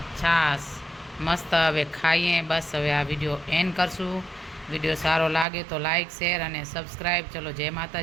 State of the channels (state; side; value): drops out; left; at 5.5 s